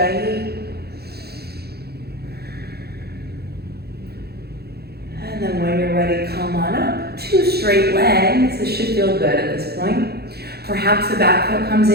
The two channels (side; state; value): left; late; 0.46 ms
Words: And then when you're ready, come on up. 2 straight legs. This should feel good at this point. Perhaps the back foot comes